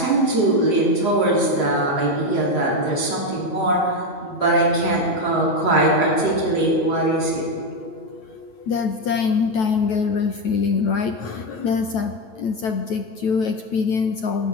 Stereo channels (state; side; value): late; right; 9.2 ms